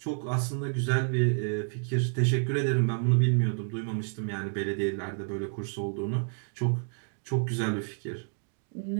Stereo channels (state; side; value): silent; left; 58 dB below the other